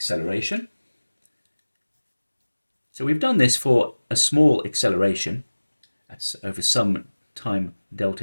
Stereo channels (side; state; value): both; inverted; correlation -1.00